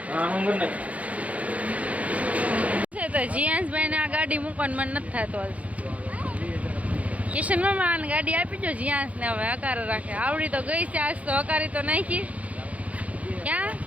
તો જીયાંશભાઈ ને આ ગાડી મૂકવાનું મન નથી થતું. કિશન મામા આને ગાડી આપી દો જીયાંશ ને. હવે હકાર રાખે. આવડી તો ગઈ છે, આજ તો હકારી તો નાખી. ક્યાં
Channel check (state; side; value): late; left; 0.067 ms